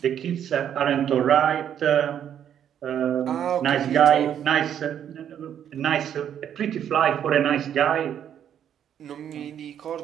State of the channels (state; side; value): quieter; left; 9.5 dB